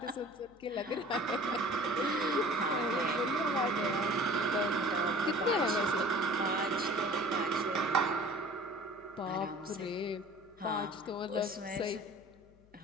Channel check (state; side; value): noise; left; hum, 28 dB below the sound